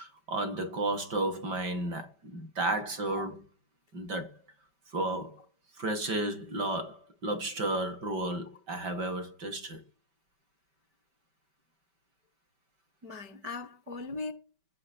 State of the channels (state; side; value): late; left; 5.2 ms